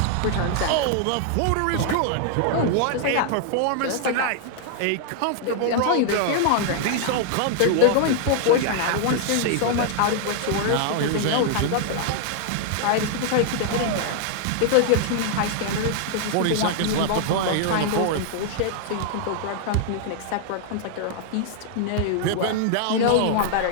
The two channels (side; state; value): both; different; correlation 0.00